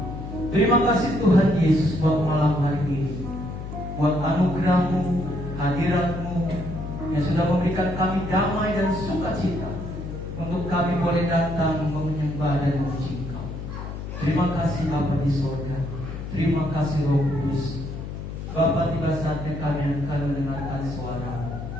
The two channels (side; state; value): left; noise; hum, 8 dB below the sound